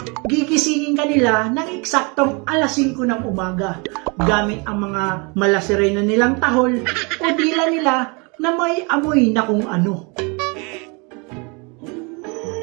gigisingin ka nila ng eksaktong alas 5 ng umaga gamit ang mga malasirena nilang tahol o dila nila na may amoy na kung ano.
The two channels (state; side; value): quieter; left; 30.8 dB